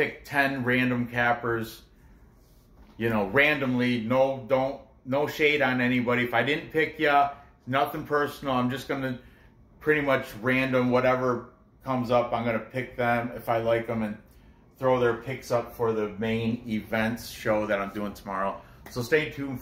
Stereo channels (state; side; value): identical; both; correlation 1.00